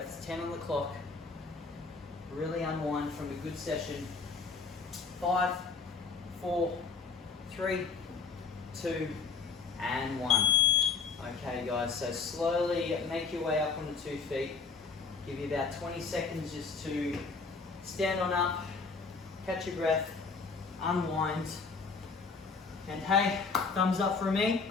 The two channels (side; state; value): right; quieter; 4.8 dB